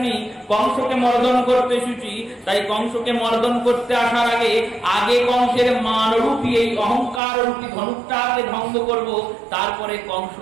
কংসকে মর্দন করতে এসেছি। তাই কংসকে মর্দন করতে আসার আগে কংসের মানরূপী এই অহংকার রূপী ধনুকটাকে ভঙ্গ করব, তারপরে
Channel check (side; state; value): left; drops out; at 7.2 s